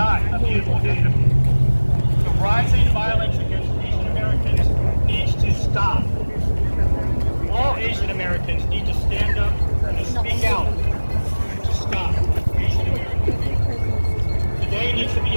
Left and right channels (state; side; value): inverted; both; correlation -1.00